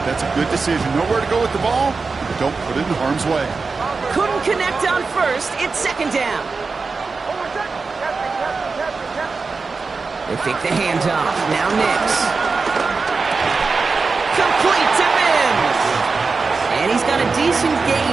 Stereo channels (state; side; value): quieter; left; 4.4 dB